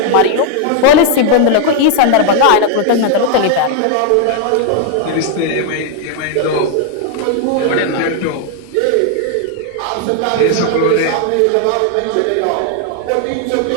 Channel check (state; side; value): different; both; correlation 0.00